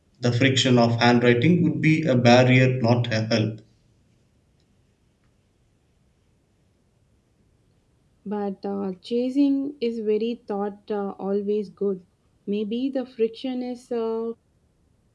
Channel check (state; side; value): identical; both; correlation 1.00